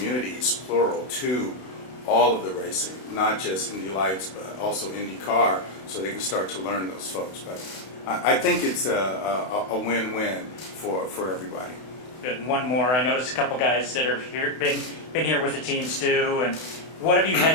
plural, to all of the racing, not just Indy Lights, but also INDYCAR, so they can start to learn those folks. But I think it's a win-win for everybody. Good. And one more. I noticed a couple guys that are here, been here with the teams too. And what have you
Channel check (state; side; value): late; right; 32 ms